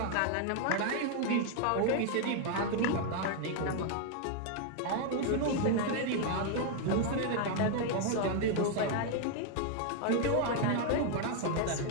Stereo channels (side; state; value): both; different; correlation 0.00